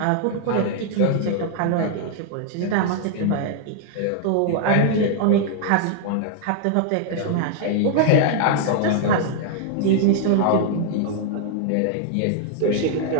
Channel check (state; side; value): different; both; correlation 0.00